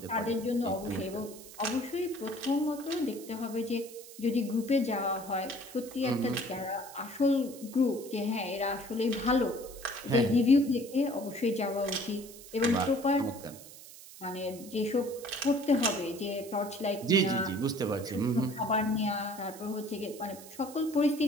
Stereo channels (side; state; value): right; noise; hiss, 17 dB below the sound